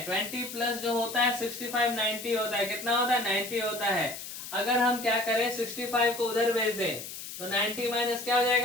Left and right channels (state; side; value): noise; left; hiss, 10 dB below the sound